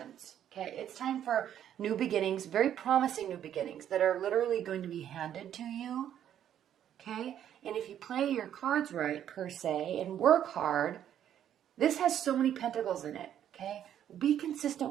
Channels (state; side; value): quieter; left; 10.3 dB